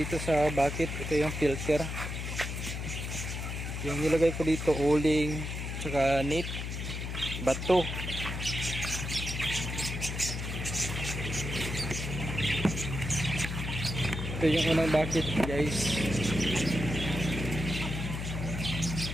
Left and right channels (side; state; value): left; noise; hum, 5 dB below the sound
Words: sa bucket. Ito yung filter. Yung nilagay ko dito, uling, tsaka net, bato. Ito yung unang bucket guys.